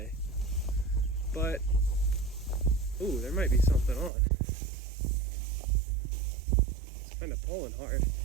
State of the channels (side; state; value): left; drops out; at 4.1 s